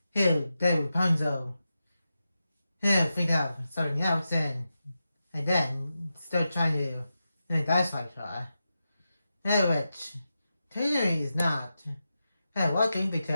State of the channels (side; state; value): both; inverted; correlation -0.90